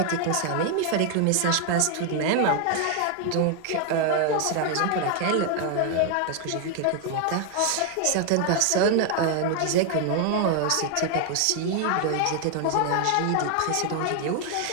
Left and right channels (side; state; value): both; different; correlation 0.00